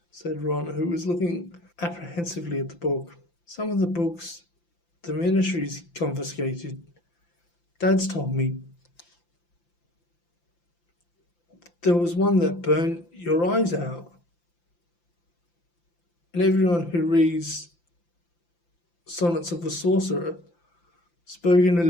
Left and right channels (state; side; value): late; right; 5.8 ms